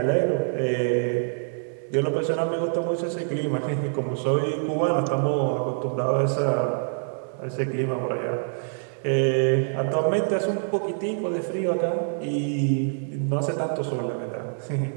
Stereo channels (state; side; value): silent; left; 61 dB below the other